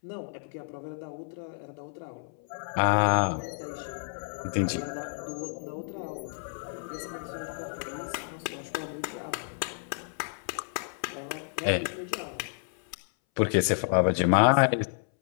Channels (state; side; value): silent; right; 58 dB below the other